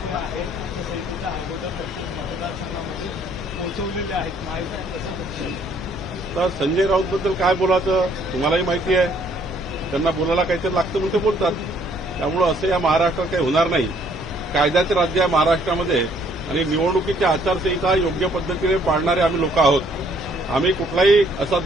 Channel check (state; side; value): normal; both; correlation 0.64